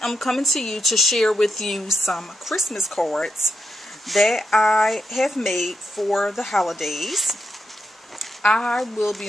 am coming to you to share with you some Christmas cards that I have made for the holidays. I will be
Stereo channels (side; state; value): both; normal; correlation 0.85